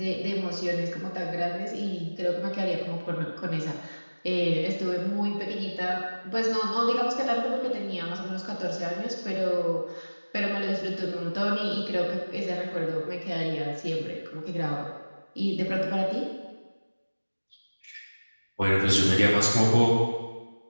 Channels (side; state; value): both; inverted; correlation -1.00